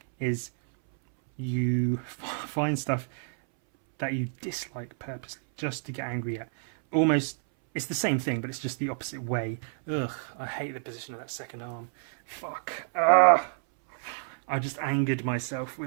is you find stuff that you dislike purposely just to get angry at. Almost, it's the same thing, but it's just the opposite way. Ugh, I hate the position of that second arm. Fuck. Ugh. I just angered myself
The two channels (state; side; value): silent; left; 58 dB below the other